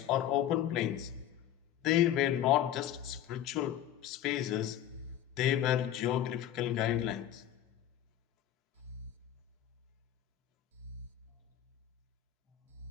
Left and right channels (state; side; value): quieter; right; 11.3 dB